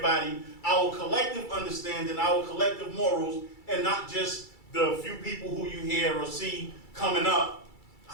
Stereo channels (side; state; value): right; late; 2.3 ms